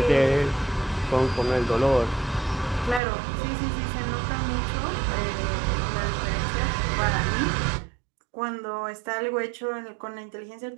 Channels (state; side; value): drops out; left; at 3.0 s